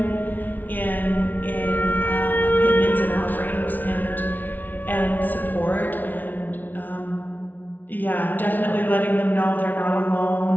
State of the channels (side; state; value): right; late; 0.082 ms